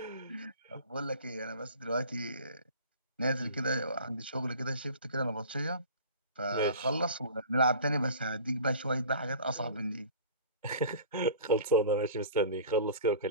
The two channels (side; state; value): both; inverted; correlation -0.43